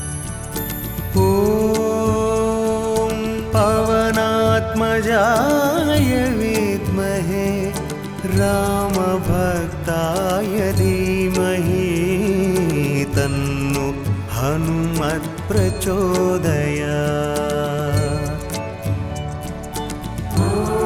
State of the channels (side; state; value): both; identical; correlation 1.00